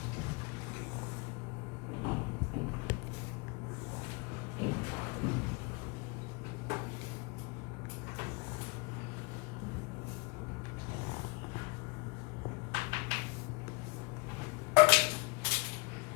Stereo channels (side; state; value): right; quieter; 29.5 dB